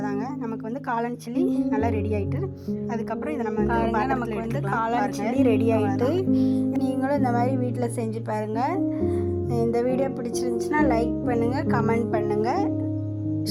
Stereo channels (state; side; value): identical; both; correlation 1.00